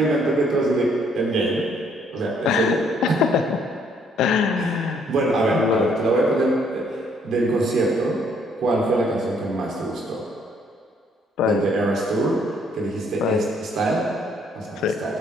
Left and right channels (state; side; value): normal; both; correlation 0.66